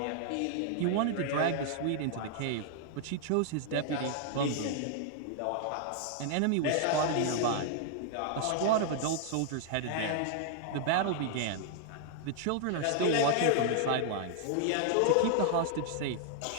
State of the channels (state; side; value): different; both; correlation 0.00